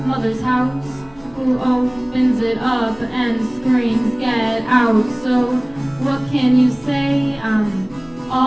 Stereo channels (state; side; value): noise; left; hum, 28 dB below the sound